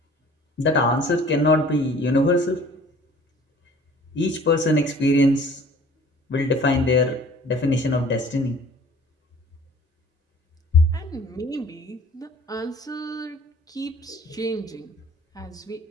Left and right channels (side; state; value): both; normal; correlation 0.50